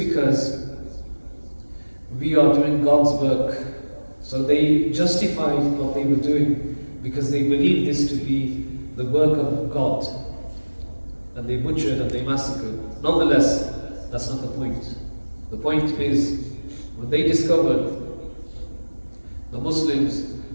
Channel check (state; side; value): inverted; both; correlation -1.00